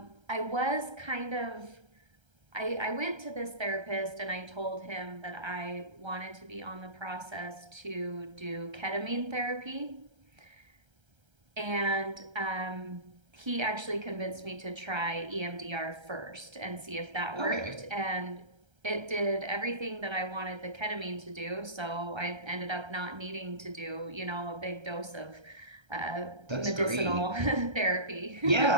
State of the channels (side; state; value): left; late; 1.3 ms